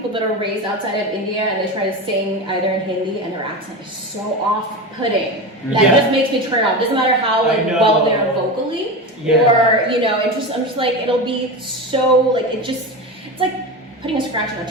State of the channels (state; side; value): normal; both; correlation 0.23